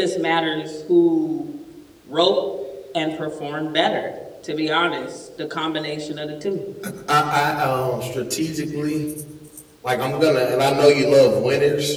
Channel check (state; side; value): identical; both; correlation 1.00